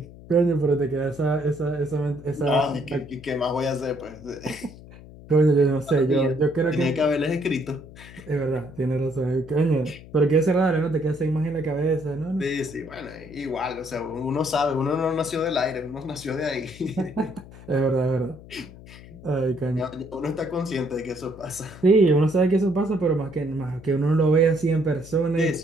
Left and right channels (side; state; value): left; noise; hum, 18 dB below the sound